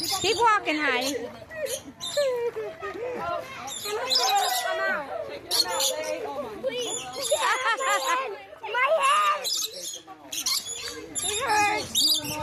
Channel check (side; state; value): both; identical; correlation 1.00